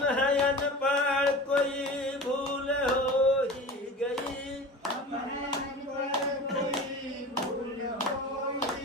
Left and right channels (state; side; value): normal; both; correlation 0.35